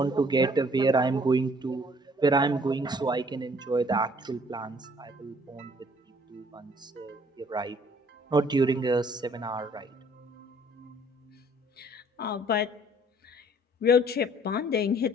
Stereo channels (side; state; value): both; normal; correlation 0.59